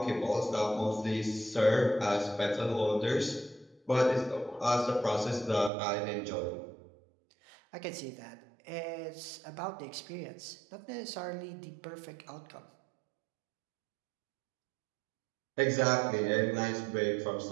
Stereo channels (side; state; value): left; drops out; at 5.7 s